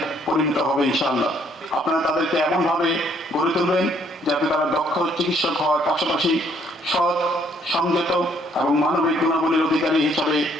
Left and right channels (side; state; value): both; normal; correlation 0.66